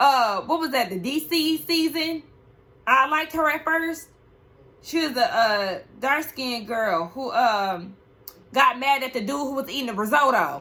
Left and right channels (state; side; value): identical; both; correlation 1.00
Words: was that? The DC season. I liked her at first. She was a dark-skinned girl who got mad at the dude who was eating the